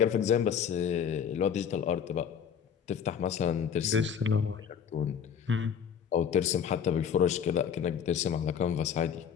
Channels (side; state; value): right; quieter; 7.8 dB